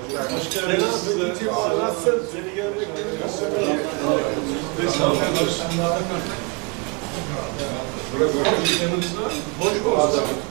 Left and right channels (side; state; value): left; quieter; 31.6 dB